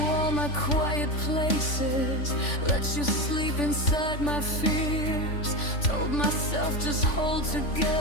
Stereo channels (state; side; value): late; right; 3.5 ms